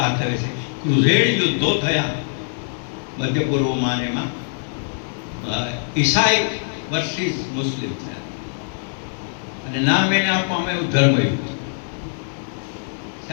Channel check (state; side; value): silent; right; digital silence